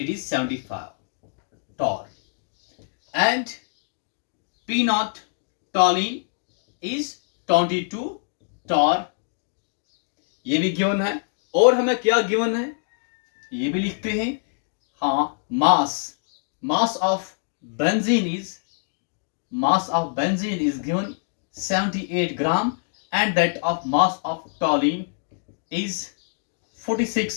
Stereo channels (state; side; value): silent; right; digital silence